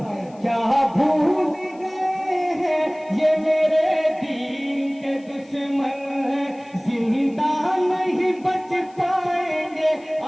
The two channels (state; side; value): noise; left; hiss, 30 dB below the sound